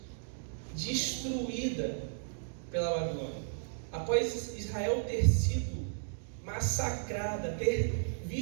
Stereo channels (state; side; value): silent; left; digital silence